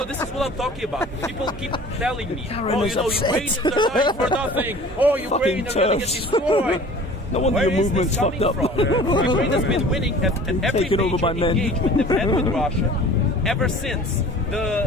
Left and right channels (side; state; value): both; normal; correlation 0.44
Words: this is what I'm talking about. People keep telling me, Karen is Ukrainians are dying for nothing. Oh, Ukraine are going to get TERFs. destroyed. No wonder your movement's fucked up. Ukraine has been winning at every Taken over by major men. engagement they've had with Russia ever since